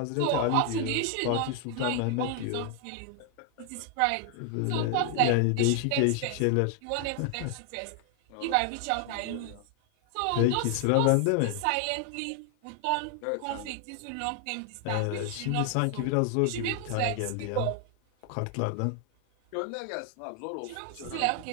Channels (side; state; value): both; different; correlation 0.00